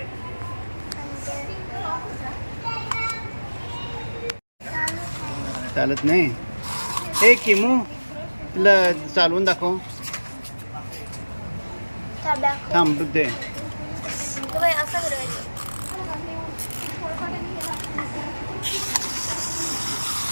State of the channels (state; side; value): inverted; both; correlation -1.00